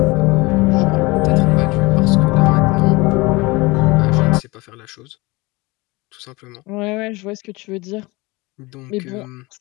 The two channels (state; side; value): quieter; right; 23.7 dB